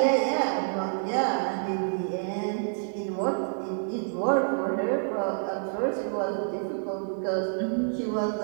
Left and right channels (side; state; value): left; silent; digital silence